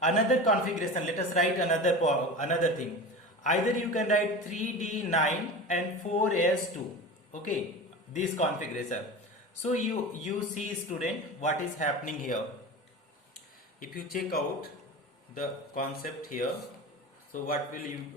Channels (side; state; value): both; normal; correlation 0.31